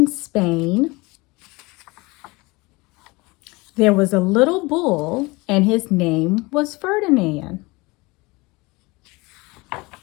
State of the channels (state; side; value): quieter; right; 24.1 dB